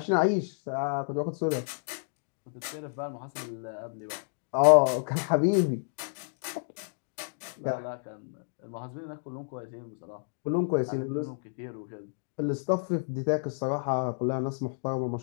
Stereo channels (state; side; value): silent; right; digital silence